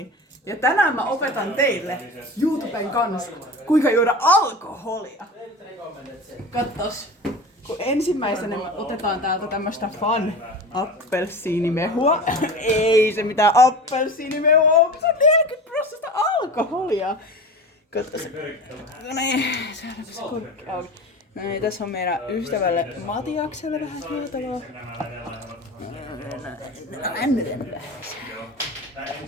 Ja tänään mä opetan teille YouTuben kanssa, kuinka juoda alkoholia. Katsos. Kun ensimmäisenä me otetaan täältä tämmöstä Fun appelsiinimehua. Ei se mitään appelsiinimehua on, se on 40% alkoholia. Katsos. No niin, saadaanko se korkki auki. No niin, tässä on meidän ystävälle Matiakselle vähän juotavaa.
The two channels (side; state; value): both; normal; correlation 0.32